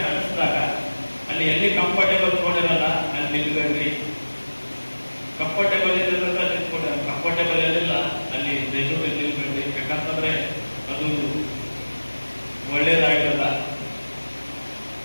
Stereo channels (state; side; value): inverted; both; correlation -1.00